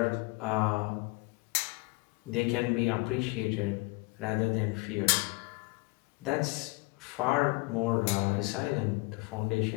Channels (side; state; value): right; quieter; 25.9 dB